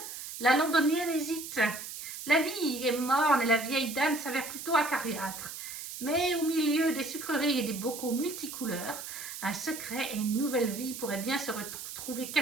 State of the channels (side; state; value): right; noise; hiss, 9 dB below the sound